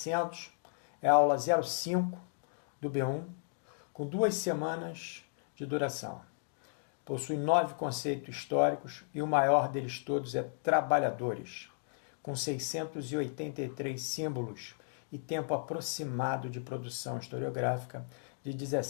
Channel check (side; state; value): right; silent; digital silence